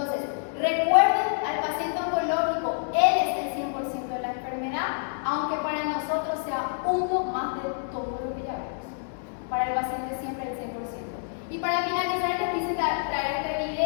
recuerden al paciente oncológico, él es el 100% de la enfermedad, aunque para nosotros sea uno más de todo lo que ya vemos. Para el paciente siempre el 100%. Y para finalizar les quise traer este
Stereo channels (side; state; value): right; silent; 60 dB below the other